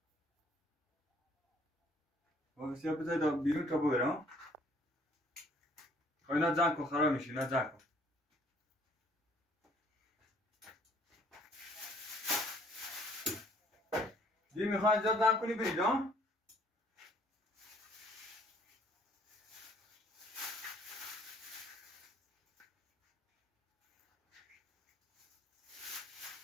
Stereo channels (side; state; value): both; normal; correlation 0.60